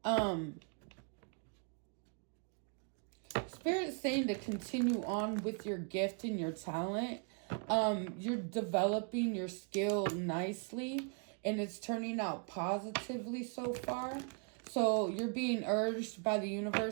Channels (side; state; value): left; quieter; 38.2 dB